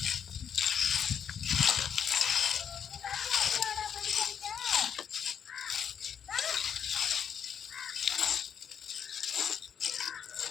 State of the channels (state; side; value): quieter; right; 8.0 dB